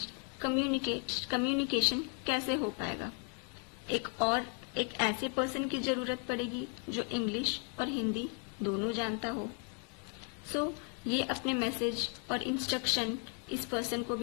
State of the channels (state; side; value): quieter; right; 33.3 dB